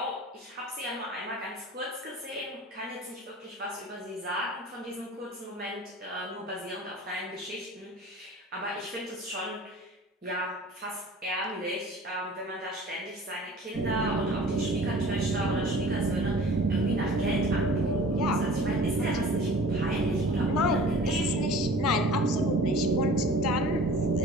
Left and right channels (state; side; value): normal; both; correlation 0.44